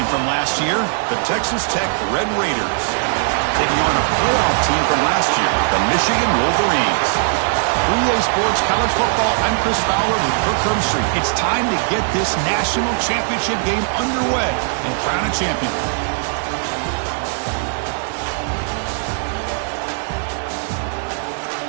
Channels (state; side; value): silent; left; 67 dB below the other